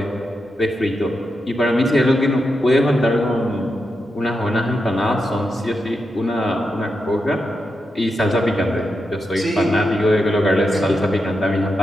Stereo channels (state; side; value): normal; both; correlation 0.87